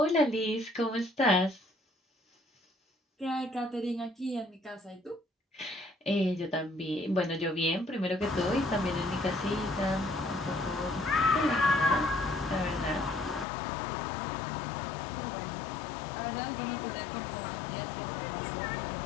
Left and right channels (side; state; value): right; drops out; at 13.5 s